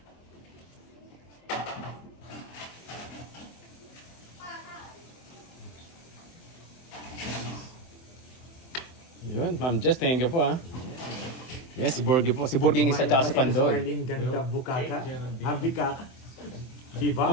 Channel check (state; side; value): late; right; 24 ms